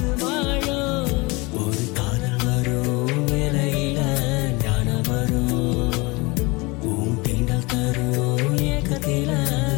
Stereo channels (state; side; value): quieter; right; 25.2 dB